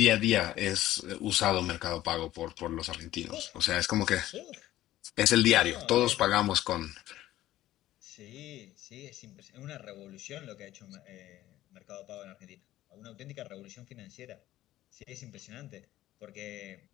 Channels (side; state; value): right; quieter; 14.6 dB